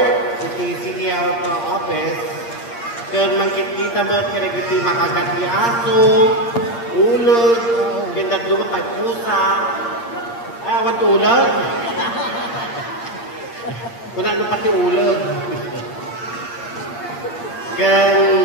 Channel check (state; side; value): late; right; 8.6 ms